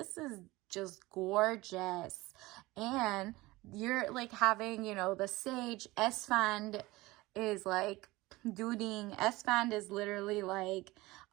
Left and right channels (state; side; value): quieter; left; 20.3 dB